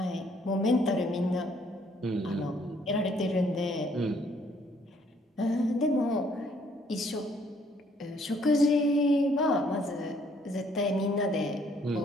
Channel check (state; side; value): normal; both; correlation 0.65